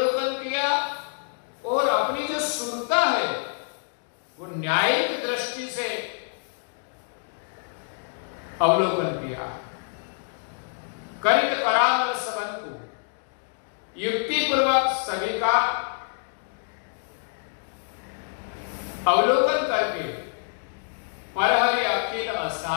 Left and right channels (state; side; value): silent; right; digital silence